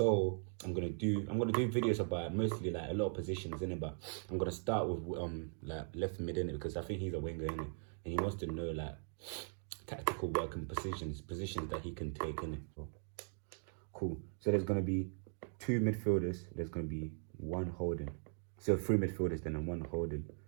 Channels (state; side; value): silent; left; 51 dB below the other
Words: I'm gonna do videos about mostly like a lot of positions, innit? But I'm gonna start with like left mid, innit? Because I think he's a winger, innit? And he wants to know like tactical work and positions that he can take, innit? Cool. So there's going to be two midfielders. There's going to be one holding. So three midfielders, then and one holding.